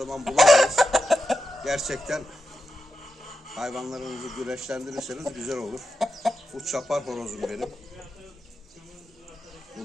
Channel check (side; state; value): both; normal; correlation 0.89